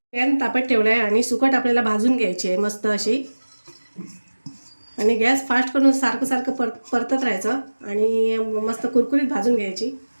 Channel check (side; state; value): both; inverted; correlation -1.00